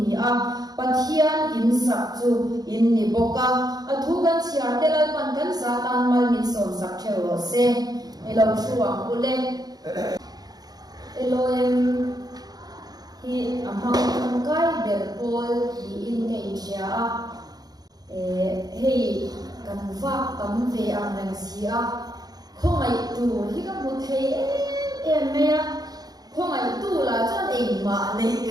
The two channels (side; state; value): left; late; 0.19 ms